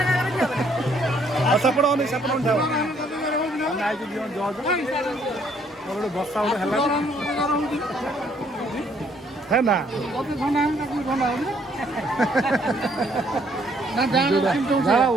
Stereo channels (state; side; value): normal; both; correlation 0.66